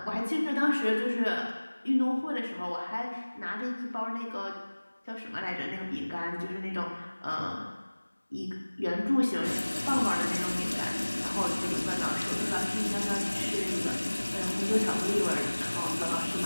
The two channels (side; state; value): both; inverted; correlation -1.00